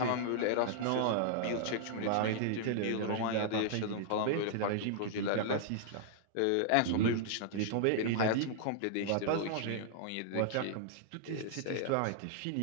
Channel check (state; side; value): different; both; correlation -0.01